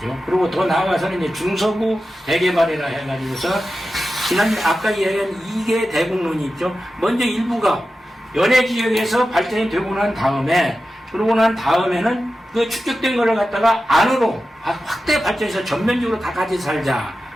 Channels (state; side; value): normal; both; correlation 0.93